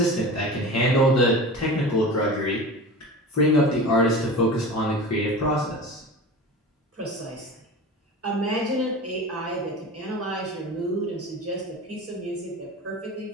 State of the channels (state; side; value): normal; both; correlation 0.32